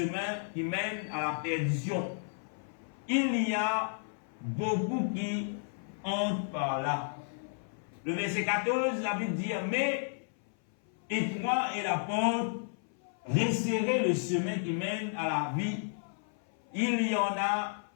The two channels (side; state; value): right; silent; 56 dB below the other